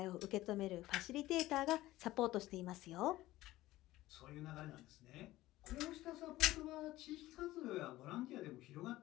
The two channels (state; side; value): quieter; right; 16.7 dB